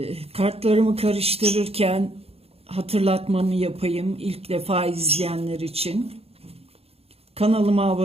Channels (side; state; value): left; late; 0.29 ms